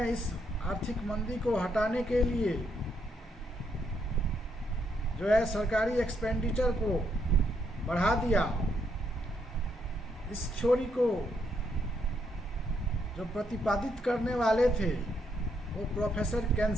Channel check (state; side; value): normal; both; correlation 0.76